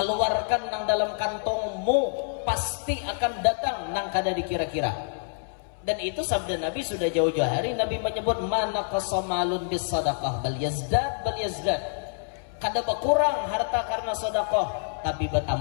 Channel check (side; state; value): right; silent; 60 dB below the other